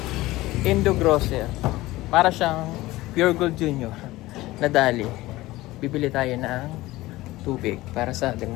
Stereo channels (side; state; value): right; quieter; 18.3 dB